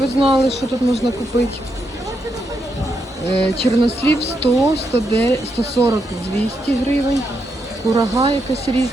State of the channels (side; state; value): both; normal; correlation 0.81